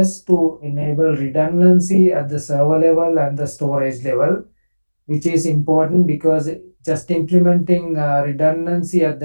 to enable redundancy at the server level and the storage level, which is important because just implementing redundancy at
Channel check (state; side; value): inverted; both; correlation -1.00